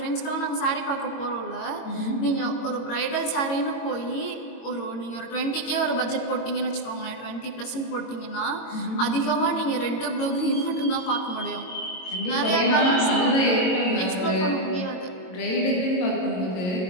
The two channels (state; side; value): late; right; 22 ms